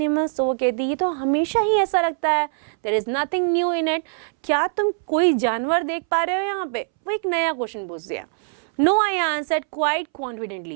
तो वो कहती है तो हमेशा ही ऐसा लगता है, there is nothing new in it, क्या तुम कोई जानवर देख पा रहे हो यहाँ पे। वो एक नया क्वेश्चन पूछ दिया। No, I answered quite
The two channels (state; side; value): silent; left; 64 dB below the other